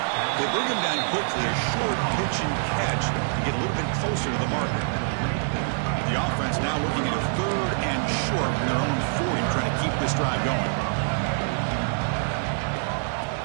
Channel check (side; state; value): left; silent; digital silence